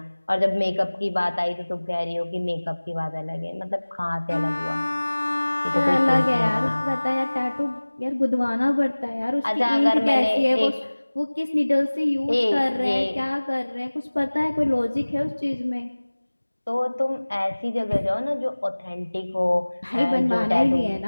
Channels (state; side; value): inverted; both; correlation -1.00